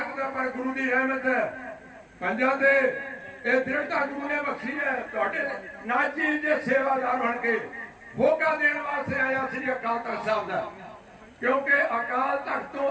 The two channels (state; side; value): identical; both; correlation 1.00